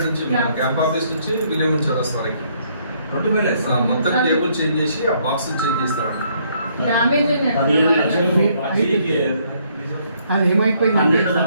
నుంచి మన క్యాంప్ ఆఫీస్ నుంచి విలియం చౌరస్తా వరకు మొత్తం కేబుల్ చేంజ్ చేసి ఆ బాక్స్ చేంజ్ చేస్తారంట. అది ఏమైపోయింది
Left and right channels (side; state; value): both; inverted; correlation -0.68